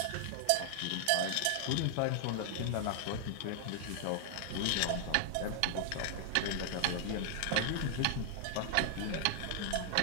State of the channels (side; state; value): both; different; correlation 0.00